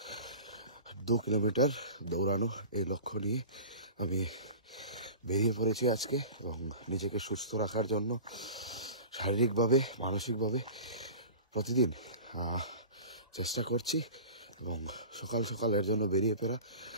2 কিলোমিটার দৌড়ানো। এই লক্ষ্য নিয়ে আমি বেরিয়ে পড়েছি আজকে এবং নিজেকে সুস্থ রাখার জন্য শারীরিকভাবে মানসিকভাবে প্রতিদিন চেষ্টা করছি। এবং সকাল সকাল এর জন্য বেরিয়ে পড়া।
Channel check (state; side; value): inverted; both; correlation -0.36